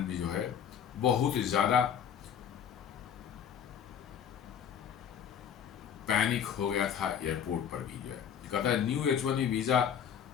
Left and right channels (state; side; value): quieter; right; 8.4 dB